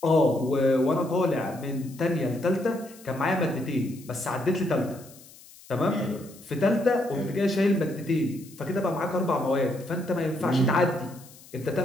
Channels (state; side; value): noise; left; hiss, 22 dB below the sound